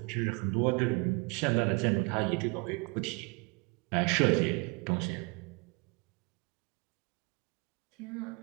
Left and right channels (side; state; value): left; quieter; 30.2 dB